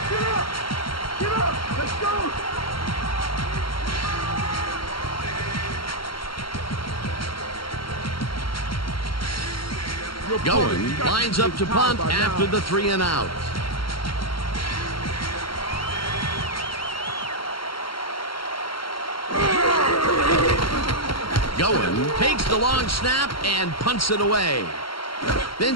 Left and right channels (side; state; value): right; late; 0.74 ms